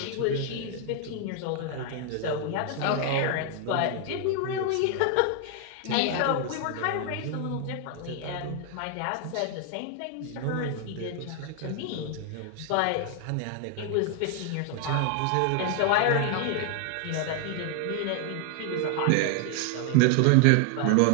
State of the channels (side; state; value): both; different; correlation 0.00